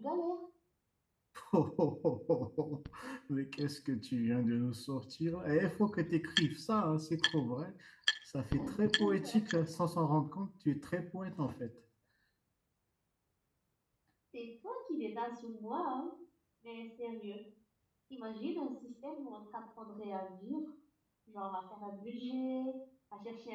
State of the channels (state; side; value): identical; both; correlation 1.00